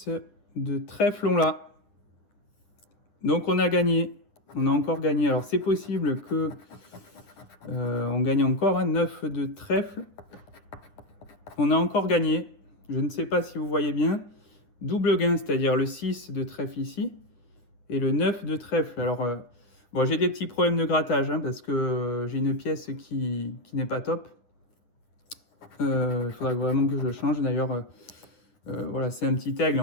de trèfle, on l'a. Donc on a gagné, on a encore gagné. Alors c'est possible que on gagne encore, hein, 9 de trèfle. On a encore gagné, je ne sais pas si vous voyez bien. Double gain, c'est-à-dire le 6 de trèfle ici et le 9 de trèfle. Alors bon, j'ai des petits problèmes de grattage, hein, parce que j'ai une pièce qui n'est pas top. Il faudra vraiment que je le change. D'ailleurs, voilà, c'est un petit aigle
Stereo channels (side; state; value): right; late; 9.5 ms